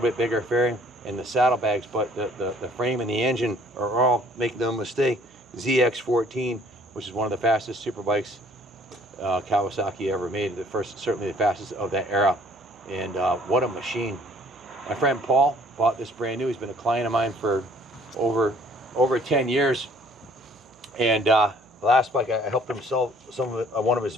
bit bigger fairing and the saddlebags, but the frame and the engine are all, make no mistake, ZX14, which is one of the fastest super bikes Kawasaki ever made. The first, certainly the fastest of that era. And what a machine. My friend Paul bought this brand new. He's been a client of mine for over 10 years. And the last bike, I helped him sell one of his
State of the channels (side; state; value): right; noise; hum, 29 dB below the sound